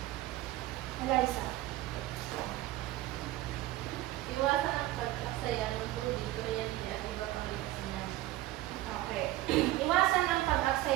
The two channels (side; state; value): left; quieter; 16.1 dB